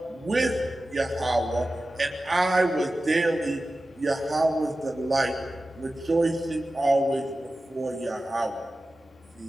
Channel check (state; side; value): normal; both; correlation 0.94